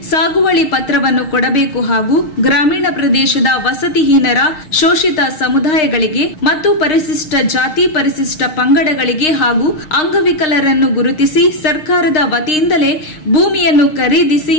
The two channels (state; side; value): late; right; 6.5 ms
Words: ಸಾಗುವಳಿ ಪತ್ರವನ್ನು ಕೊಡಬೇಕು ಹಾಗೂ ಗ್ರಾಮೀಣ ಪ್ರದೇಶದ ವಸತಿಹೀನರ ಶೋಷಿತ ಸಮುದಾಯಗಳಿಗೆ ಮತ್ತು ಪರಿಶಿಷ್ಟ ಜಾತಿ ಪರಿಶಿಷ್ಟ ಪಂಗಡಗಳಿಗೆ ಹಾಗೂ ಅಂಗವಿಕಲರನ್ನು ಗುರುತಿಸಿ ಸರ್ಕಾರದ ವತಿಯಿಂದಲೇ ಭೂಮಿಯನ್ನು ಖರೀದಿಸಿ